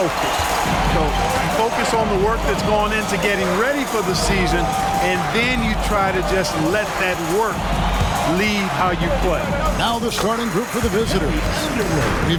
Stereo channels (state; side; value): identical; both; correlation 1.00